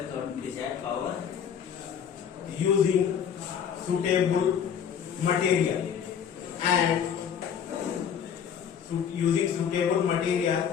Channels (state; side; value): quieter; right; 8.0 dB